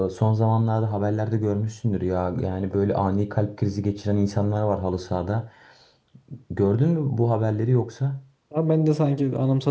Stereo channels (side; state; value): both; identical; correlation 1.00